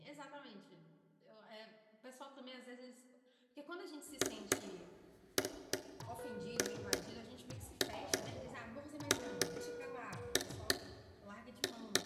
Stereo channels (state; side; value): identical; both; correlation 1.00